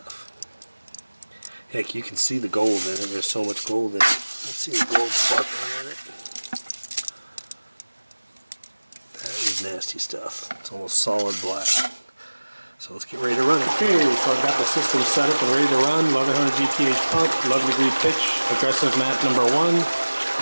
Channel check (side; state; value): both; inverted; correlation -1.00